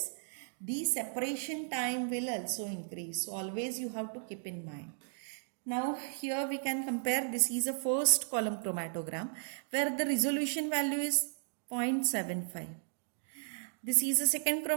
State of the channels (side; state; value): left; silent; digital silence